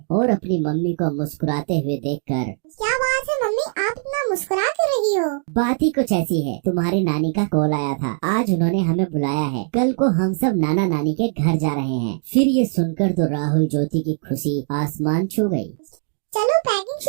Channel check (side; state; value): left; silent; 65 dB below the other